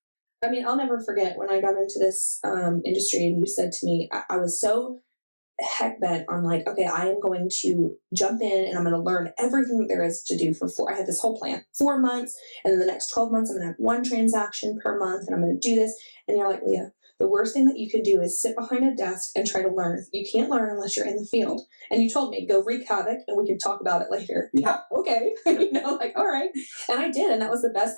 I mean, I'll never forget when I got into this industry and you said to me, I was so heck bent on like, okay, I am going to jump in and I'm going to learn everything that there is to do I had this whole plan, 4 months. And then the next 12 months, I'm going to have one transaction per month and I'm going to do this. And you're like, Leah, the worst thing that you can do is sit behind a desk and try to learn. You can't learn unless you're in the field. And you told me, go wreak havoc and we can talk about it later. Yeah. Okay. Like, all right. And I did. And that was the best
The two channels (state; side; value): inverted; both; correlation -1.00